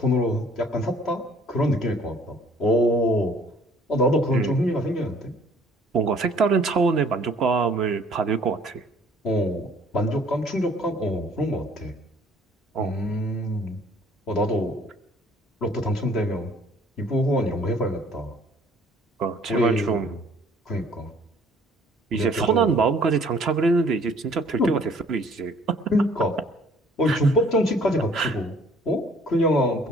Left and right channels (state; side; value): normal; both; correlation 0.57